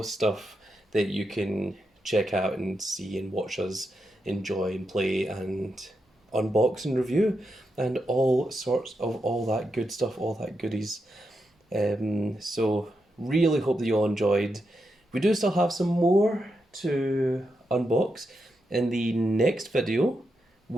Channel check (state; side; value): normal; both; correlation 0.85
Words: stuff that you can check out and see and watch us enjoy and play and unbox and review, and all sorts of all that good stuff, all that goodies. So really hope that you all enjoyed. We do still have some more to unbox. In the next video,